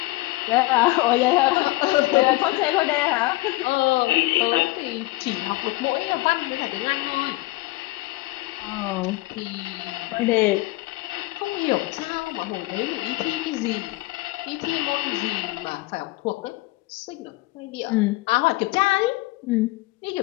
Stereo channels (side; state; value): right; quieter; 20.4 dB